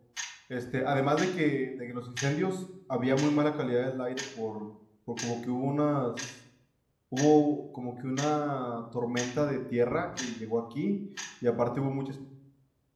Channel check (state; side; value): identical; both; correlation 1.00